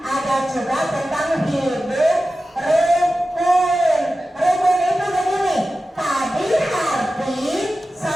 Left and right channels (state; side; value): normal; both; correlation 0.94